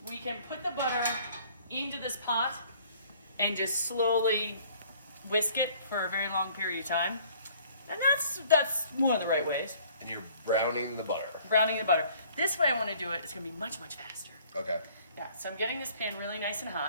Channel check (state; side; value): inverted; both; correlation -0.56